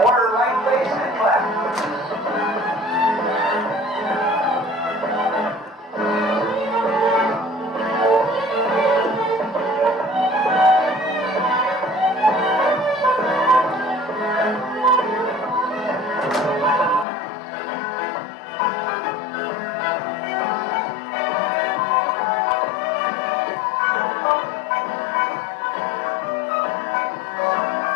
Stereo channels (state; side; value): drops out; right; at 17.1 s